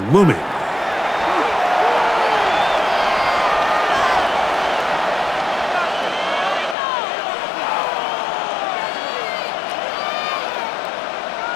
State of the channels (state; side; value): drops out; right; at 6.8 s